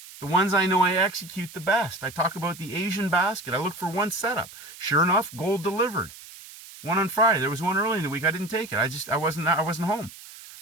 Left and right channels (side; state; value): right; noise; hiss, 17 dB below the sound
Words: The ones I know I execute the best. I talk about the Asian basket. I look for one setup. Sure enough, gold delivered. One on Friday. There was one early in the week. I didn't take it. I wasn't home.